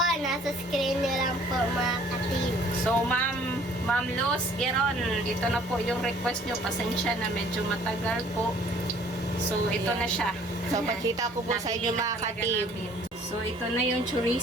nasa screen nyo lang po mga katim. So, Ma'am Luz Geron, ito na po yung request nyo. Pasensya na medyo matagal po. So, ito na siya. So pakita ko po sa inyo mga katim. So, ito na yung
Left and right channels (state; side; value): normal; both; correlation 0.56